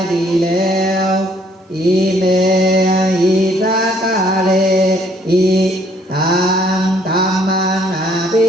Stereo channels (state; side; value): normal; both; correlation 0.64